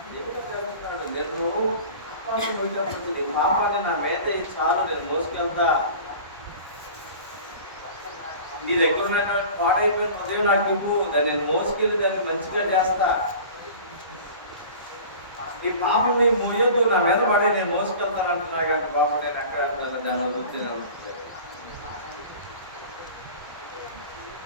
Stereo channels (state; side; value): inverted; both; correlation -0.40